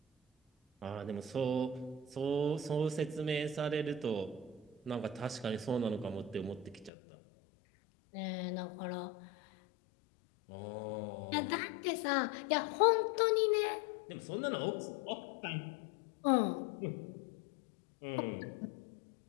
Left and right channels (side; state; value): right; drops out; at 6.9 s